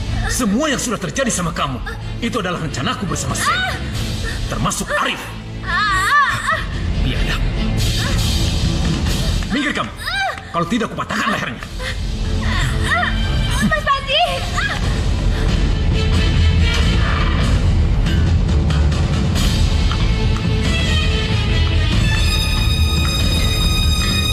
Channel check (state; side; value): identical; both; correlation 1.00